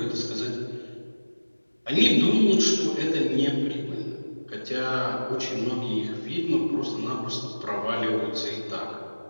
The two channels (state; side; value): inverted; both; correlation -1.00